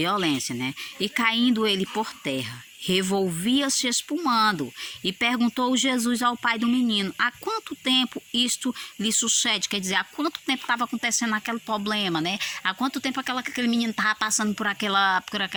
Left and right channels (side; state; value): both; identical; correlation 1.00